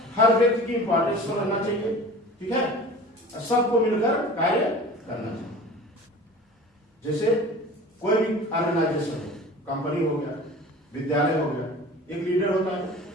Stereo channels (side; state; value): both; normal; correlation 0.40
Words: हर व्यक्ति की इंपॉर्टेंस को रहना चाहिए, ठीक है, और सबको मिलकर कार्य करना चाहिए। जैसे कोई भी ऑर्गेनाइजेशन है, कंपनी हो गया, विद्यालय हो गया, एक लीडर होता है।